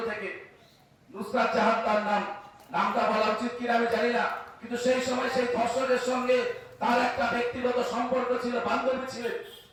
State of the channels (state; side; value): identical; both; correlation 1.00